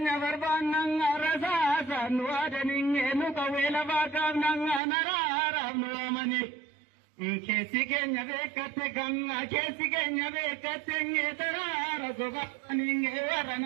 rasasa nuada ninge nuka wela bakavnanga narara nuamani. Kesi kenya bekate nge tarara sobaninge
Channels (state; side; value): drops out; left; at 4.8 s